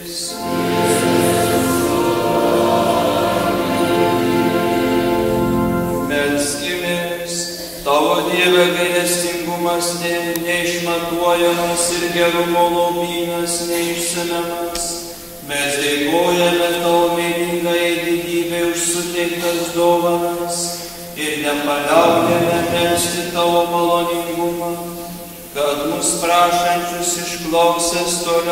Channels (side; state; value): both; identical; correlation 1.00